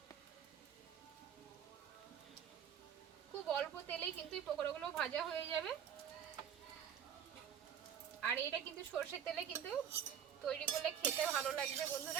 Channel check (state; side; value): quieter; left; 8.7 dB